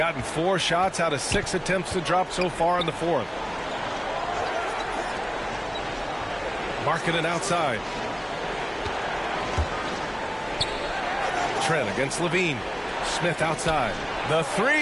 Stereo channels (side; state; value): both; identical; correlation 1.00